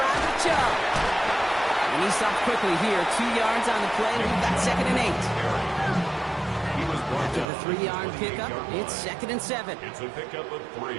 with Chubb. And he stopped quickly here. 2 yards on the play. We've got second and 8. After the 3-yard pickup, it's second and 7. It's a pickup of 3.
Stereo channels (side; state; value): left; drops out; at 7.5 s